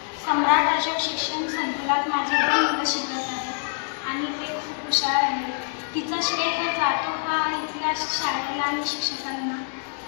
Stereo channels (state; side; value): silent; right; 62 dB below the other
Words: सम्राट अशोक शिक्षण संकुलात माझे 2 मुलं शिकत आहेत आणि ते खूप हुशार आहेत. तिचा श्रेय हे जातो हा इथल्या शाळेला आणि शिक्षकांना.